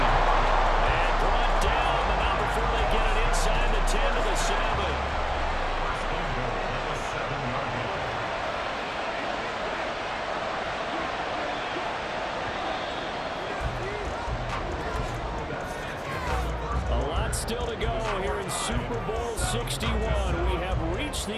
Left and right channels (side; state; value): both; identical; correlation 1.00